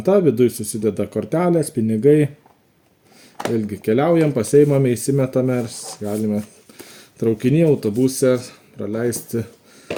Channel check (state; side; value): identical; both; correlation 1.00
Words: viduje susideda kortelės, pinigai. Vėlgi keliaujam, pasiimame, įsimetame ir galime traukinį, autobuse praleisti